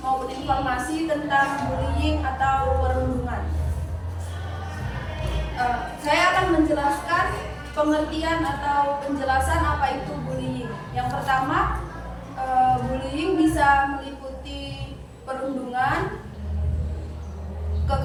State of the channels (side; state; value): both; identical; correlation 1.00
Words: maupun informasi tentang bullying atau perundungan. Saya akan menjelaskan pengertian atau penjelasan apa itu bullying. Yang pertama, bullying bisa meliputi perundungan,